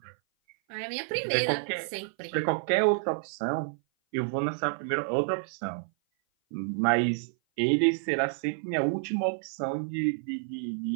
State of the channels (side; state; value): left; silent; 56 dB below the other